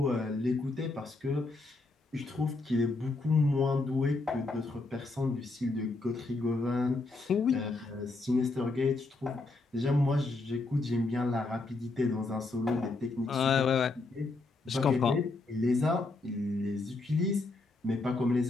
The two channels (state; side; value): quieter; right; 3.3 dB